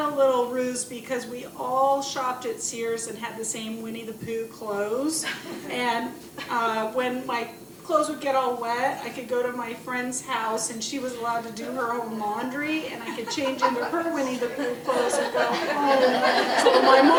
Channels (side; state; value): both; identical; correlation 1.00